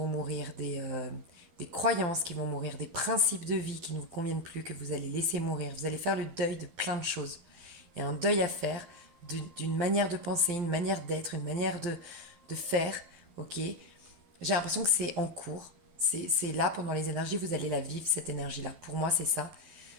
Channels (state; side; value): late; left; 12 ms